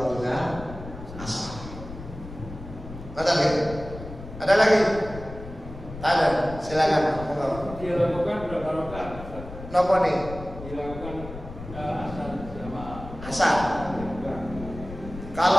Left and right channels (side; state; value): left; noise; rumble, 12 dB below the sound